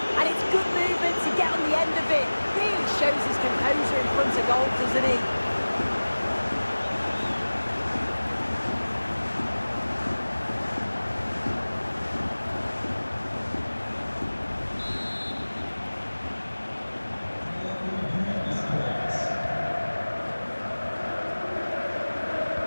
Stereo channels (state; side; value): inverted; both; correlation -1.00